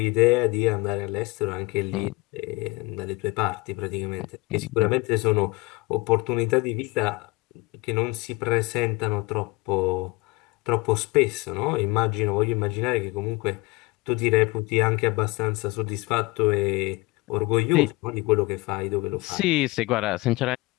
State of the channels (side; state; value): right; quieter; 23.9 dB